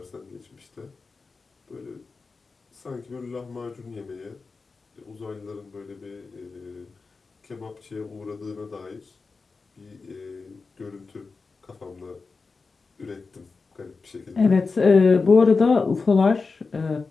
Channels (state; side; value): quieter; right; 4.3 dB